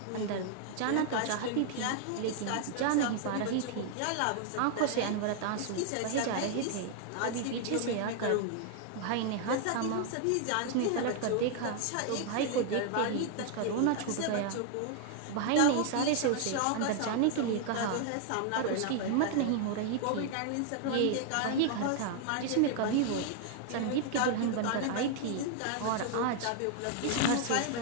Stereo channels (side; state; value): both; different; correlation 0.00